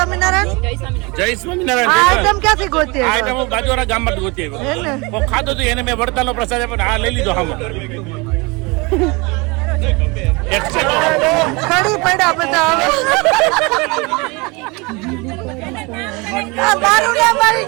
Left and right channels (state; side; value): quieter; left; 27.1 dB